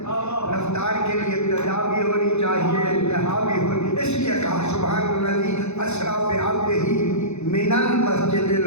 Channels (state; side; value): late; right; 0.81 ms